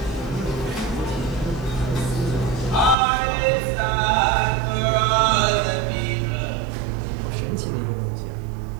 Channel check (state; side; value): drops out; left; at 3.0 s